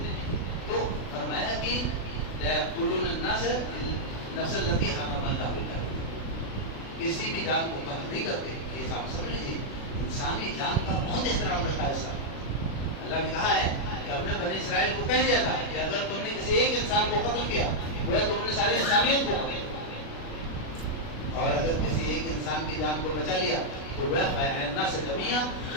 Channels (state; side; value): late; right; 36 ms